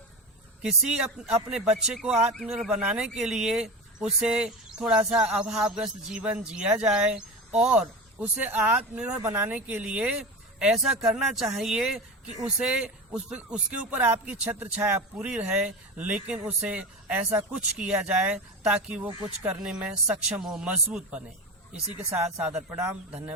किसी अपने बच्चे को आत्मनिर्भर बनाने के लिए उसे थोड़ा सा अभावग्रस्त जीवन जिया जाए और उसे आत्मनिर्भर बनाने के लिए ऐसा करना चाहिए कि उसके ऊपर आपकी छत्र छाया पूरी रहे, लेकिन उसे ऐसा कुछ किया जाए ताकि वो कुछ करने में सक्षम हो, मजबूत बने। इसी के साथ सादर प्रणाम,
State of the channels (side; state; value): both; normal; correlation 0.25